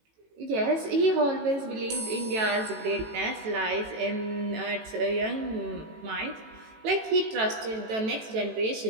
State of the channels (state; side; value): late; left; 18 ms